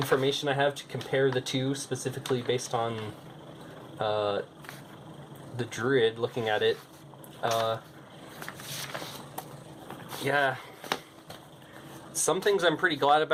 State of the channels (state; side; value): identical; both; correlation 1.00